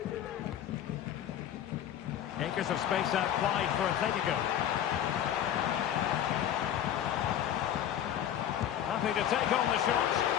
Acres of space out wide for Atletico. Happy to take on the shot.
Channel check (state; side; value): quieter; right; 10.4 dB